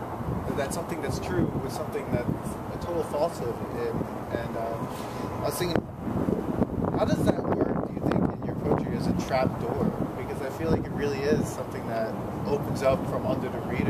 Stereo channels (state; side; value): identical; both; correlation 1.00